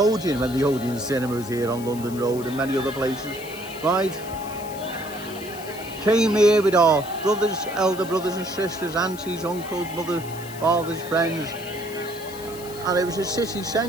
when the Odeon cinema was here on London Road and many other places, right? Came here with our brothers, elder brothers and sisters, aunties, uncles, mothers, fathers, friends. And it was a city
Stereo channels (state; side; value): noise; left; hiss, 15 dB below the sound